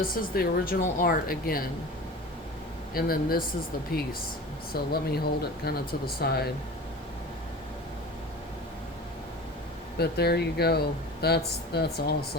is the original art again. And then this is the piece. So let me hold it kind of to the side. But there you go. That's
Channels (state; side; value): normal; both; correlation 0.36